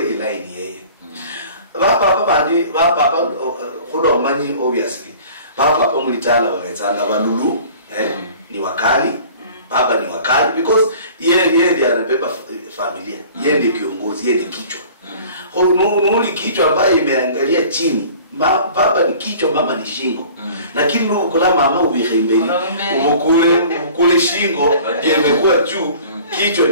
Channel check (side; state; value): both; inverted; correlation -0.47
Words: line yeye papa bandi papa khodo manyi obviously papa mulitala baletsanga balulu ni wakali baba ni wakali because yeye ndiye anabeba familia yeye ndiye kiongozi yeye ndiye kichwa nuli kichwa ambaye imeangalia chini baba ni kichwa mama ni shingo lakini ukula mama ubihembeni ukule shingo ndiye imekuwa juu kichwa